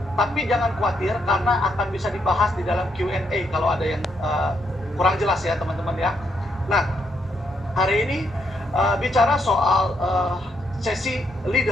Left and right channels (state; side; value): normal; both; correlation 0.77